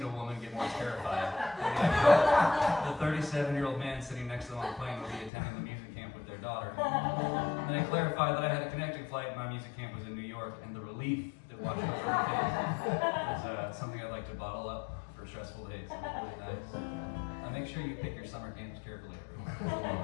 a woman get more terrified. The 37-year-old man sitting next to them on the plane will be attending the music camp with their daughter. And then I clarified that I had a connecting flight and my music camp was in New York, and the relief that washed over her face was something I'd like to bottle up for stressful days. It was really nice. Make sure you pick your summer camps carefully, everyone.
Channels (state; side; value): drops out; right; at 5.3 s